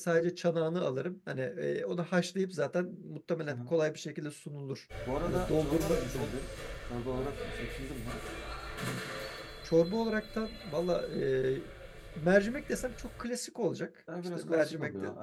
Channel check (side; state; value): both; identical; correlation 1.00